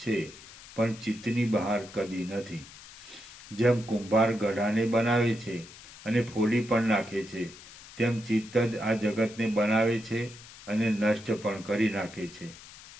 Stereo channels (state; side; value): noise; left; hiss, 18 dB below the sound